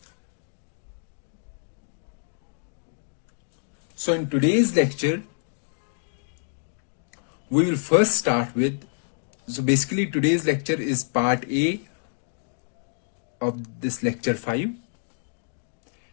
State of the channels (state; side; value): silent; right; digital silence